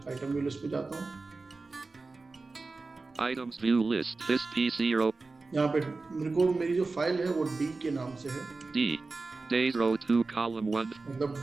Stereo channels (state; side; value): quieter; left; 3.7 dB